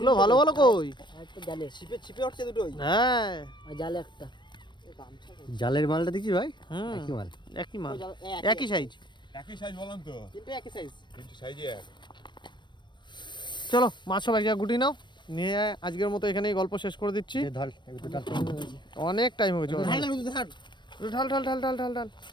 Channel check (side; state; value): right; late; 0.22 ms